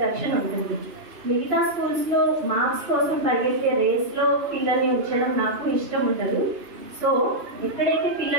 ఉంటుంది. మిగతా స్కూల్స్లో మార్క్స్ కోసం పరిగెత్తే రేస్లో పిల్లల్ని ఉంచడం నాకు ఇష్టం ఉండదు. సో ఎక్కడైతే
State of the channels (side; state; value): left; late; 2.9 ms